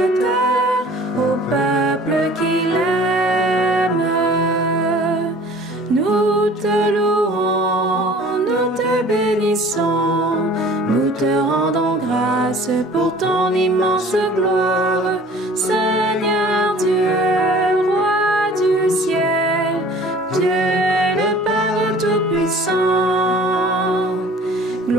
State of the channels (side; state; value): both; normal; correlation 0.48